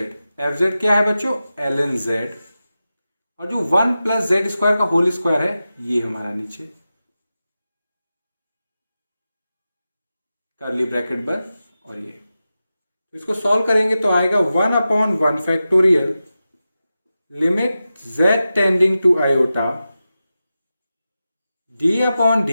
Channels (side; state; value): both; inverted; correlation -0.93